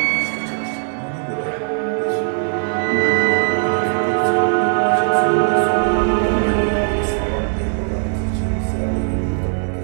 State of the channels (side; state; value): left; silent; digital silence